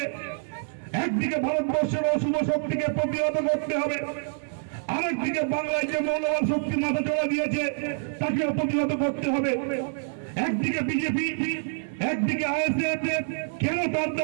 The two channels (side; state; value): left; silent; 57 dB below the other